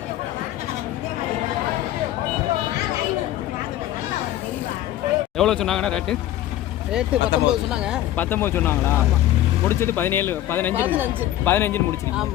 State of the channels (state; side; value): quieter; right; 13.5 dB